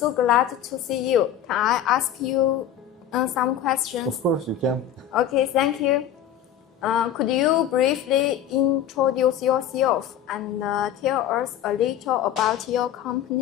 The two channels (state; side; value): quieter; right; 9.9 dB